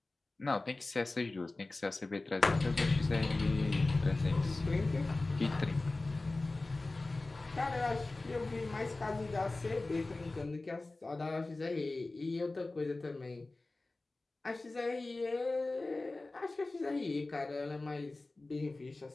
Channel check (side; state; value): right; quieter; 3.2 dB